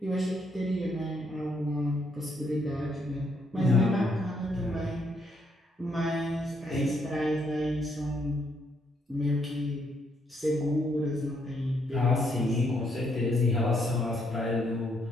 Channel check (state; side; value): normal; both; correlation 0.73